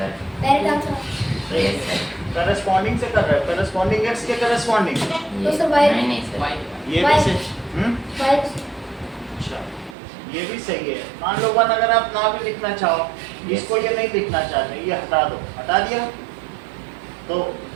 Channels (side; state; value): left; drops out; at 10.0 s